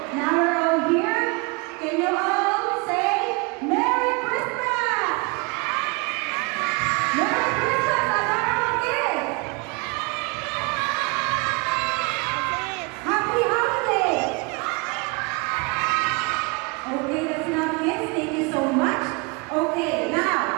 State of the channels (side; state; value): left; quieter; 30.1 dB